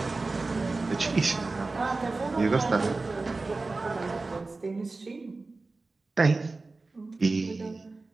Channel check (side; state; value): left; quieter; 3.5 dB